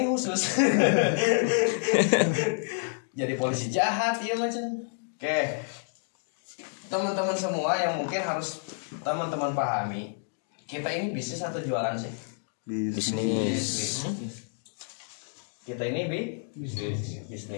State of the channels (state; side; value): silent; right; digital silence